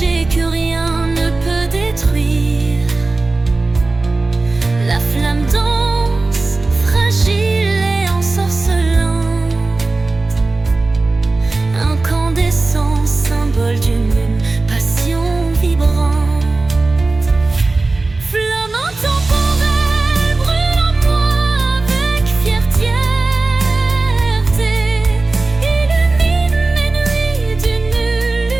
que rien ne peut détruire. La flamme danse, fragile et ensorcelante, incandescent, symbole d'une passion vibrante. Flamme intemporelle, brûle en moi avec fierté, illumine mes nuits d'une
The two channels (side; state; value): left; quieter; 3.4 dB